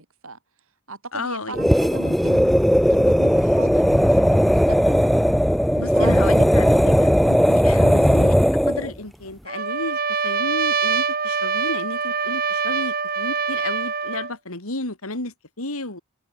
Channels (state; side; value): normal; both; correlation 0.82